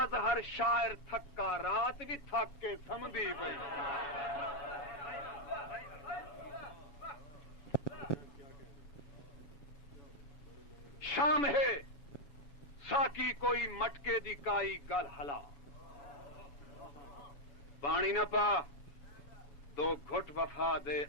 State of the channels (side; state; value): right; late; 7.4 ms